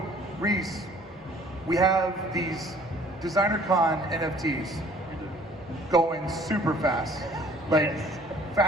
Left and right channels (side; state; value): both; normal; correlation 0.55